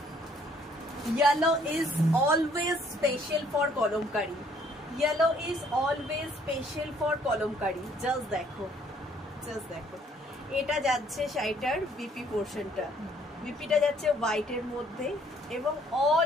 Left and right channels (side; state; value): both; normal; correlation 0.63